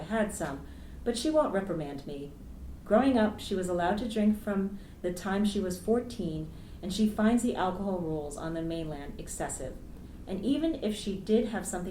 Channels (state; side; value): identical; both; correlation 1.00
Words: had some, but she won't reprimand me. Growing up, she was allowed to drink from the time she was 14, and she finds the alcohol rules on the mainland excessive. And even if she did have